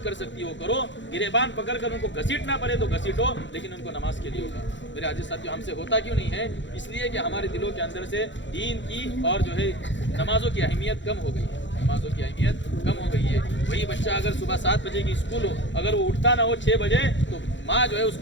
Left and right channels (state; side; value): late; right; 0.54 ms